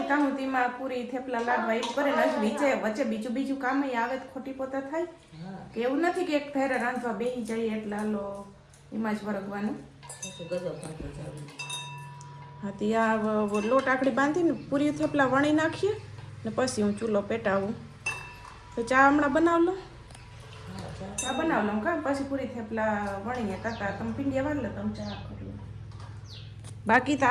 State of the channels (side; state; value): both; identical; correlation 1.00